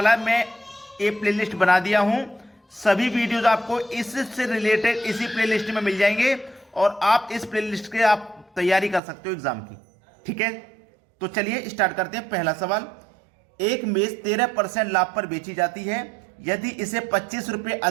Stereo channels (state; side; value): drops out; left; at 9.0 s